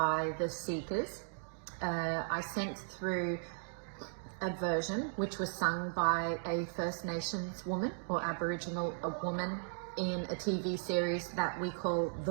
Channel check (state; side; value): silent; left; digital silence